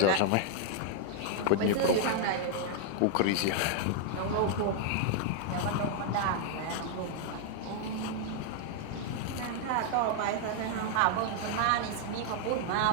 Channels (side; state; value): both; different; correlation 0.00